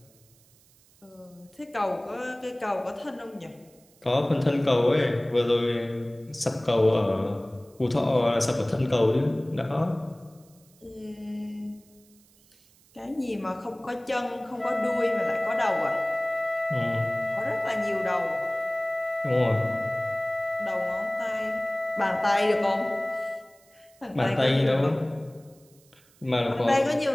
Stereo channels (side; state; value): right; noise; hiss, 30 dB below the sound